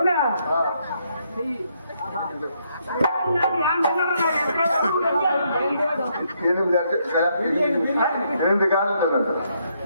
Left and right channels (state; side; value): inverted; both; correlation -0.74